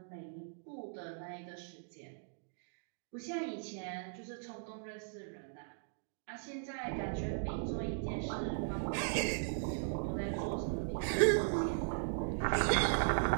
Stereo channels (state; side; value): silent; left; digital silence